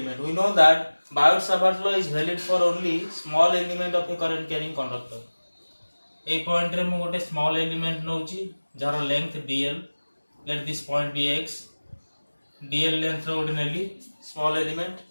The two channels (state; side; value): inverted; both; correlation -1.00